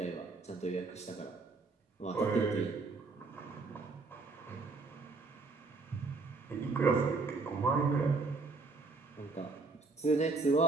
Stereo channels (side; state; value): left; quieter; 3.9 dB